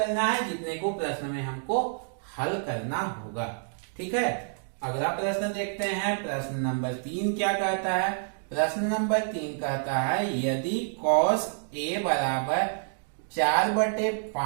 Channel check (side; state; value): left; silent; digital silence